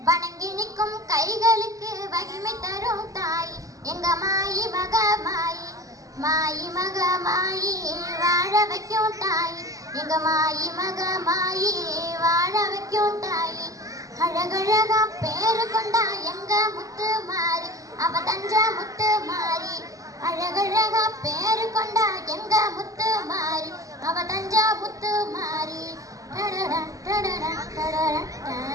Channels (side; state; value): left; late; 0.16 ms